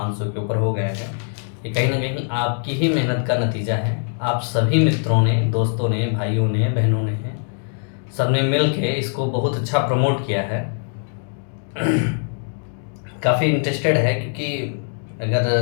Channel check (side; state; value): right; silent; 57 dB below the other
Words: के ऊपर हो गए हैं। ये कहीं ना कहीं आपकी ही मेहनत का नतीजा है। आप सभी मित्रों ने, दोस्तों ने, भाइयों ने, बहनों ने, सबने मिल के इसको बहुत अच्छा प्रमोट किया है। काफ़ी इंटरेस्टेड है क्योंकि अगर